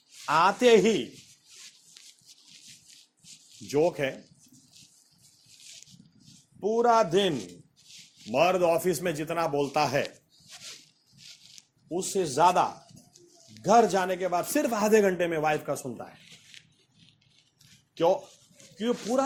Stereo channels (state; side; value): identical; both; correlation 1.00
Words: आते ही जोक है, पूरा दिन मर्द ऑफिस में जितना बोलता है उससे ज्यादा घर जाने के बाद सिर्फ आधे घंटे में वाइफ का सुनता है। क्यों? क्योंकि